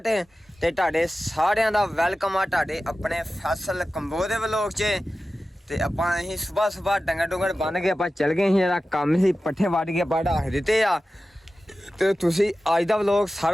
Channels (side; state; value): both; normal; correlation 0.94